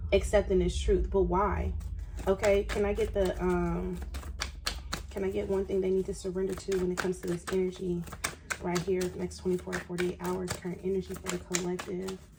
accepting this truth. But why? Okay. Can I get the, can I get one thing they need to surrender to when it comes to this energy right here, next 24 to 48 hours, current energy for the collective?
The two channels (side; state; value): both; identical; correlation 1.00